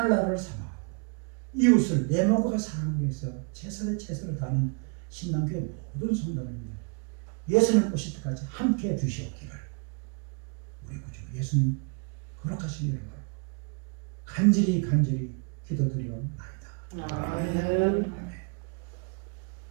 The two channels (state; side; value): quieter; left; 35.8 dB